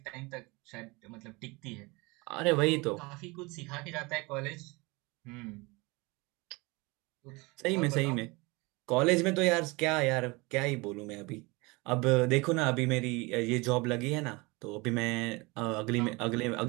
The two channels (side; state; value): left; quieter; 25.4 dB